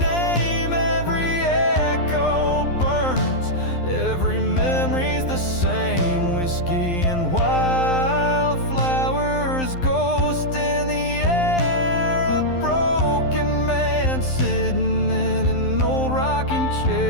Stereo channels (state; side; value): late; right; 12 ms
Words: Every echo burns, every memory's the same. Whiskey and wildflowers, ghost in the air. A broken man sitting in an old rocking